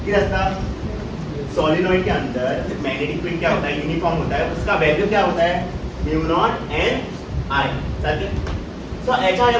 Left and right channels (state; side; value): identical; both; correlation 1.00